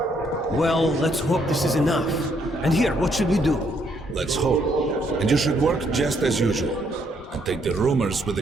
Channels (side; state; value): both; normal; correlation 0.71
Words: Well, let's hope this is enough. And here, what should we do? Let's hope. And you should work just as usual. And take the rumors with